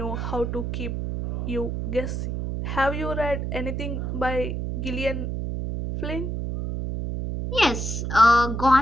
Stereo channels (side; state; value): right; noise; hum, 3 dB below the sound